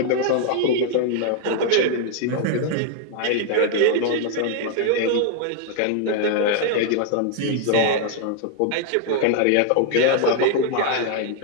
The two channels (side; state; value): both; different; correlation 0.00